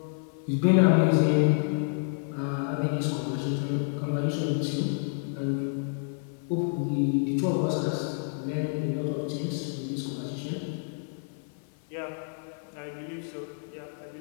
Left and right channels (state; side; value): silent; right; 56 dB below the other